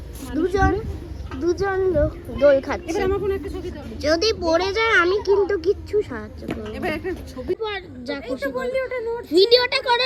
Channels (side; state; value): both; identical; correlation 1.00